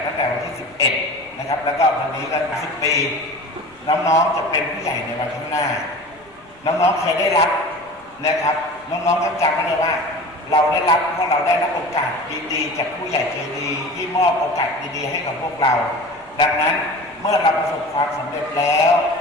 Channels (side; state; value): left; noise; rumble, 30 dB below the sound